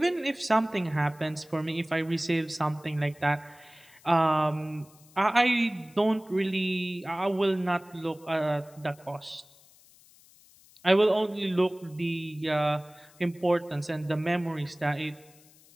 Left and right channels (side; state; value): left; noise; hiss, 27 dB below the sound